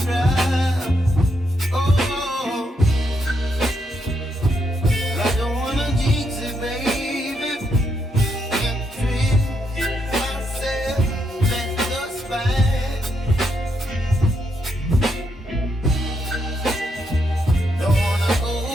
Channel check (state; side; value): normal; both; correlation 0.78